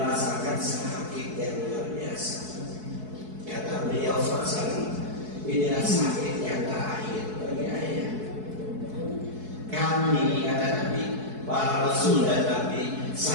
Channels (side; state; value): left; late; 4.7 ms